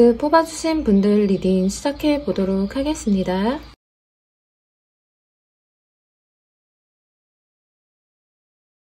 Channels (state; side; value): identical; both; correlation 1.00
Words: 뽑아주신 분들 리딩 시작해 보도록 하겠습니다.